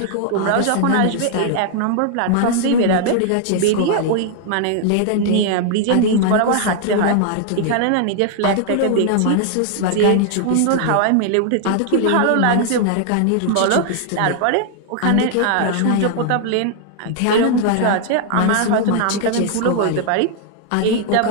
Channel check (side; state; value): both; different; correlation 0.00